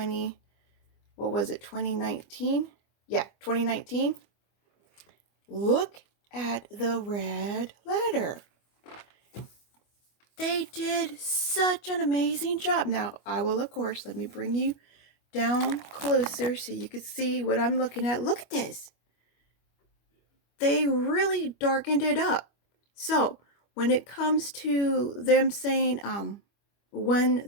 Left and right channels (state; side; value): late; right; 25 ms